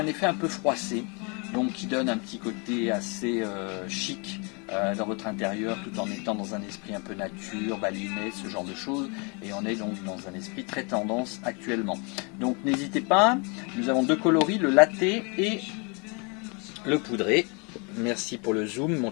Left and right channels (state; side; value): quieter; right; 32.8 dB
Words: effet un peu froissé, donc qui donne un petit côté assez chic dans votre intérieur, tout en étant dans un esprit un peu nature, baliné, ce genre de choses, et on est donc dans un esprit très tendance actuellement. Donc n'hésitez pas, nous avons deux coloris, le latte et le poudré. Merci pour le zoom mon